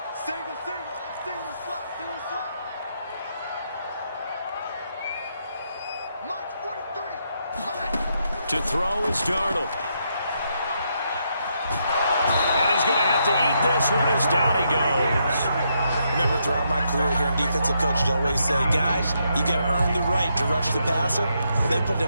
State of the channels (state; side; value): inverted; both; correlation -0.78